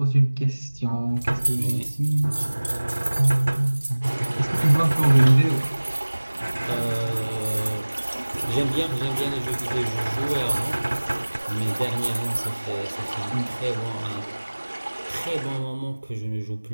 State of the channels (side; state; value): both; inverted; correlation -1.00